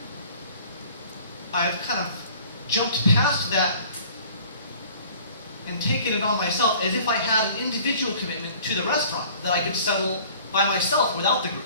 I've kind of jumped past that and taken it on myself as if I had an individual commitment to the restaurant that I could settle by myself without the group.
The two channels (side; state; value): both; inverted; correlation -0.50